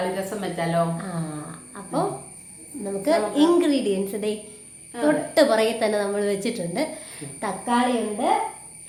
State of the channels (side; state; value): both; identical; correlation 1.00